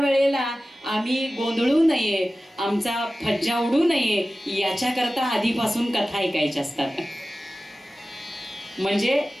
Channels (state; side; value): normal; both; correlation 0.96